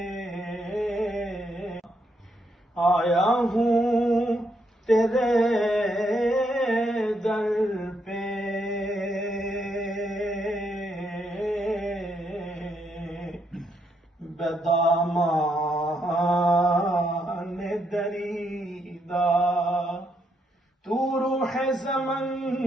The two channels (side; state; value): both; normal; correlation 0.77